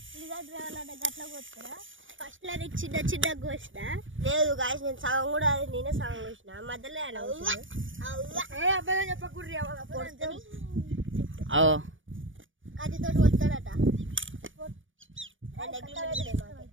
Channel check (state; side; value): late; left; 0.57 ms